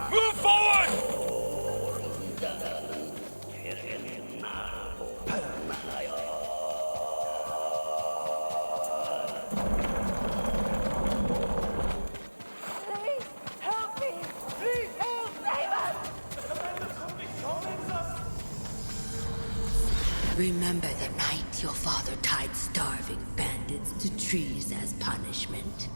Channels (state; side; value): inverted; both; correlation -1.00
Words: Move forward! Please, help me! Please, help! Save us! Remember the night your father tied starving bandits to trees as punishment?